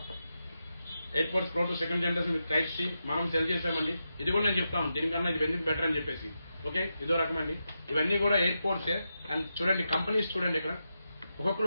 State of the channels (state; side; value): inverted; both; correlation -0.87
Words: AirPods pro two second generation with type C మనం సెల్ చేసామండి. ఇది కూడా నేను చెప్తాను దీనికన్నా ఇది ఎందుకు బెటర్ అని చెప్పేసి. ఓకే, ఇదో రకం అండి, ఇవన్నీ కూడా ఎయిర్పోర్ట్సే. అండ్ చూడండి కంపెనీస్ చూడండి, ఇక్కడ